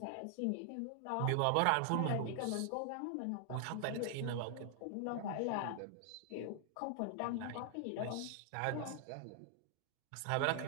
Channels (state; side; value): different; both; correlation 0.00